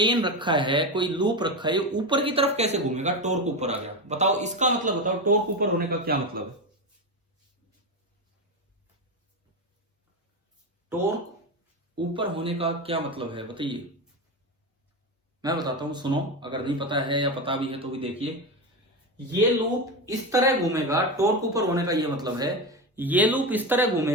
रखा है, कोई लूप रखा है, ये ऊपर की तरफ कैसे घूमेगा? टॉर्क ऊपर आ गया। बताओ इसका मतलब बताओ, टॉर्क ऊपर होने का क्या मतलब है? टॉर्क ऊपर होने का क्या मतलब है बताइए? मैं बताता हूं, सुनो। अगर नहीं पता है या पता भी है तो भी देखिए। ये लूप इस तरह घूमेगा, टॉर्क ऊपर होने का ये मतलब है, ये लूप इस तरह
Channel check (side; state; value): both; normal; correlation 0.17